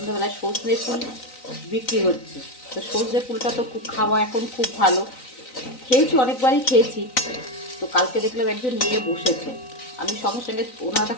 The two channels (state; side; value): late; right; 3.9 ms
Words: সজনে ফুল বিক্রি হচ্ছে। তো সজনে ফুলটা তো খুব খাওয়া এখন খুব ভালো, খেয়েছি, অনেকবারই খেয়েছি। তো কালকে দেখলাম একজন নিয়ে বসেছে, আমি সঙ্গে সঙ্গে ওনার